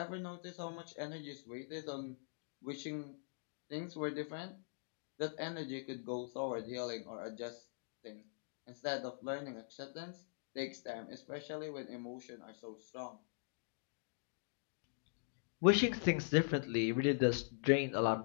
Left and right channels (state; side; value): silent; right; digital silence